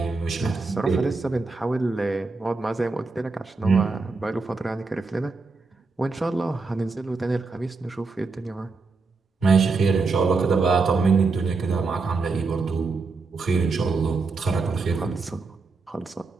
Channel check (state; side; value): quieter; left; 4.1 dB